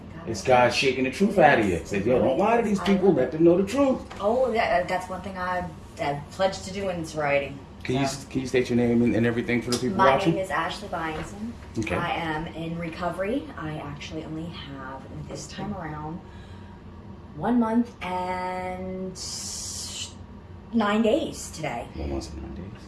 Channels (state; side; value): identical; both; correlation 1.00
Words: It's God shaking the truth out of you. Say, yo, don't lie to these people. Let them know the truth. Oh, yeah, that's one thing I pledged to do in sobriety. Can you state your name and everything for the people My watching? name is Ashley Byington. Okay. I am in recovery. I actually only have, this time around, 1 month and 9 days today. 1 month and 9 days.